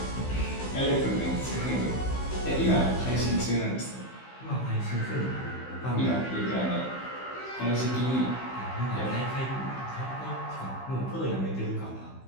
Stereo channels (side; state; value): right; late; 16 ms